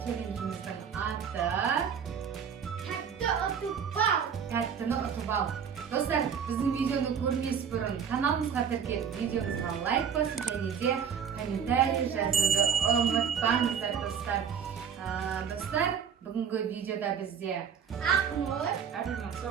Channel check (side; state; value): left; quieter; 7.4 dB